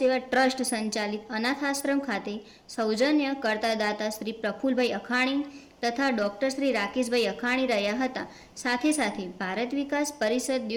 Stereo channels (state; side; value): identical; both; correlation 1.00